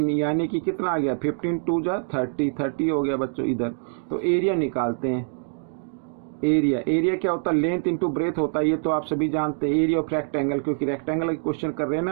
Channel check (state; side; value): silent; left; digital silence